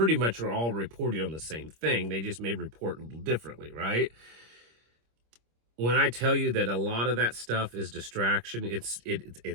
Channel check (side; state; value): left; late; 25 ms